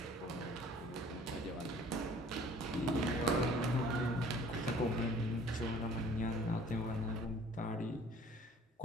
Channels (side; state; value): both; normal; correlation 0.52